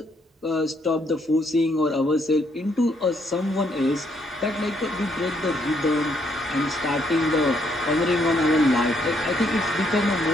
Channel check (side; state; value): both; normal; correlation 0.72